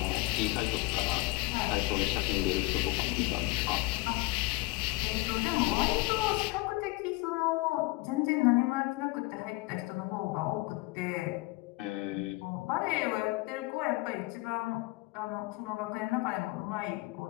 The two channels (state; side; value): quieter; right; 22.2 dB